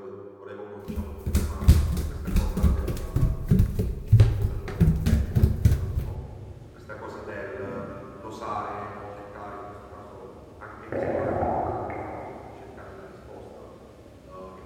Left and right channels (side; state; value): both; identical; correlation 1.00